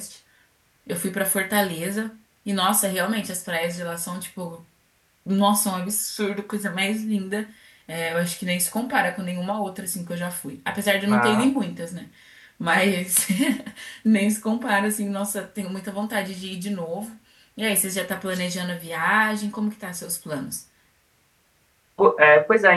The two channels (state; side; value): identical; both; correlation 1.00